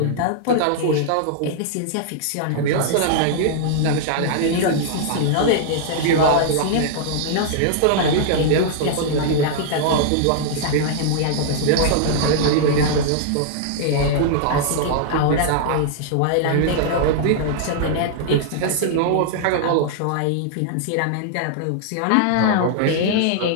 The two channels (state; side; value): different; both; correlation -0.01